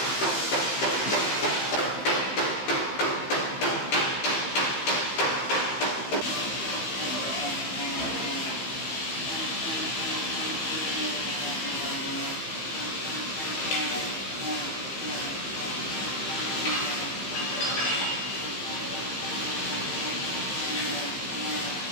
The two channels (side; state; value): right; late; 15 ms